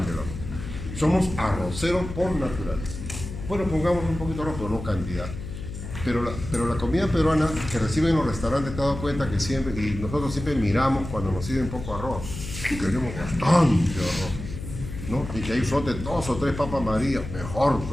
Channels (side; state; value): left; noise; hum, 9 dB below the sound